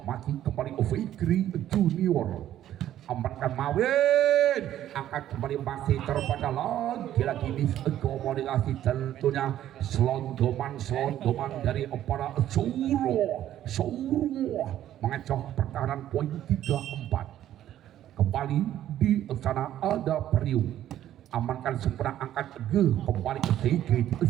masih kembali Fikri Junior amankan Mawin angkat kembali masih terbaca lagi miskomunikasi tentunya selondoman dari para Suro mengecoh pertahanan poin 3-4 kembali di sana ada Priu amankan sempurna angkat kembali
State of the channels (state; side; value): quieter; left; 12.1 dB